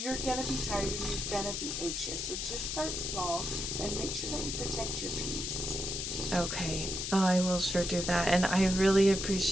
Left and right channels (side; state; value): left; noise; hiss, 3 dB below the sound